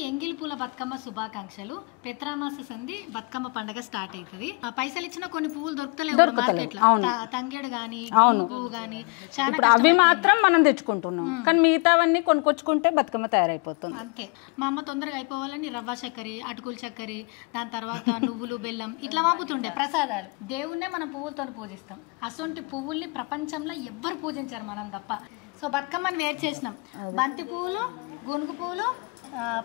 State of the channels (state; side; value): quieter; right; 30.0 dB